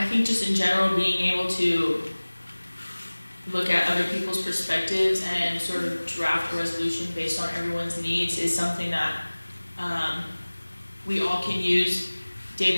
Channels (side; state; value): both; inverted; correlation -1.00